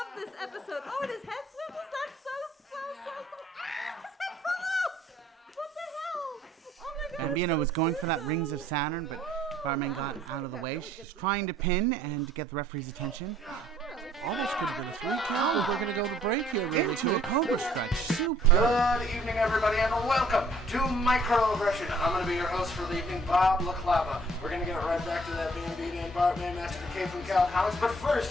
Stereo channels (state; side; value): normal; both; correlation 0.59